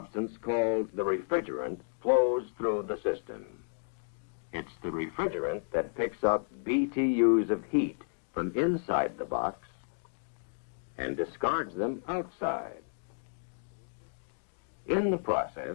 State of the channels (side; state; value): right; silent; digital silence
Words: called the refrigerant flows through the system. It's the refrigerant that picks up BTUs of heat from inside the box and discards them outside. In the